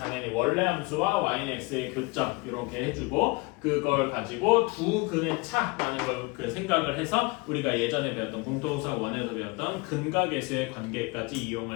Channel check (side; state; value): right; quieter; 26.0 dB